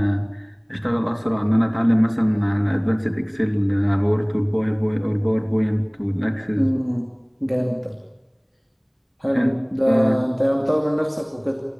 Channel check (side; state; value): both; identical; correlation 1.00